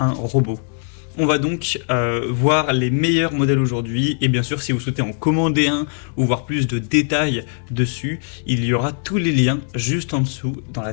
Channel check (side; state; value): right; silent; digital silence